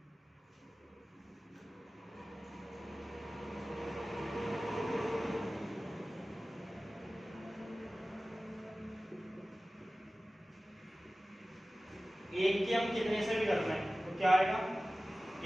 एक की हम कितने से भी करते हैं तो क्या आएगा?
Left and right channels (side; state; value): both; normal; correlation 0.97